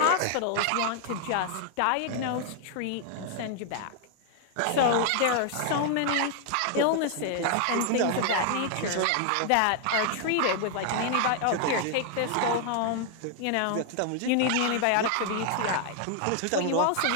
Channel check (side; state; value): both; different; correlation 0.00